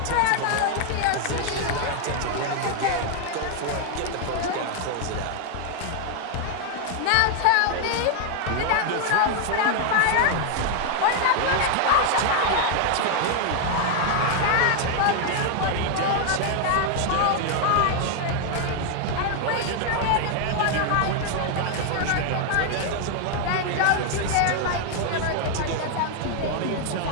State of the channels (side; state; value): both; different; correlation 0.00